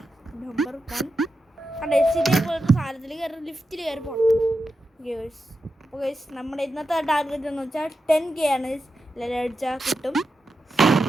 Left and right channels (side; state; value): both; normal; correlation 0.89